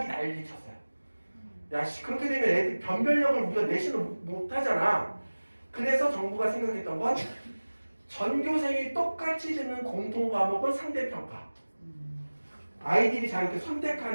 난리 쳤어요. 야, 그렇게 되면 애들 변별력을 우리가 내신을 못 하잖아. 그래서 정부가 생각했던 건 전교생이 똑같이 듣는 공통 과목은 상대평가. 아이들이 자유롭게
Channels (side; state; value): both; inverted; correlation -1.00